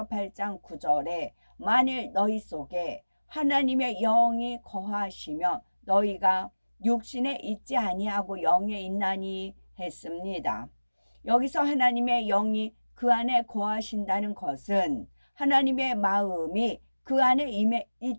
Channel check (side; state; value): both; inverted; correlation -1.00